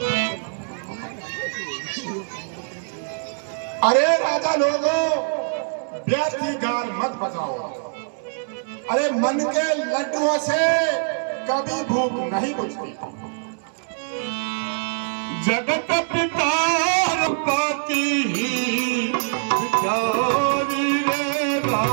अरे राजा लोगों, व्यर्थी गान मत बजाओ। अरे मन के लड्डुओं से कभी भूख नहीं बुझती। जगत पिता पाती बिचारी रे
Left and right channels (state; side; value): silent; left; digital silence